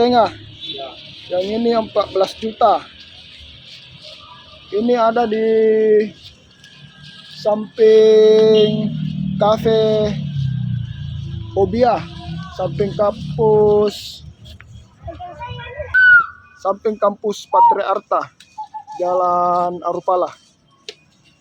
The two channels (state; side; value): identical; both; correlation 1.00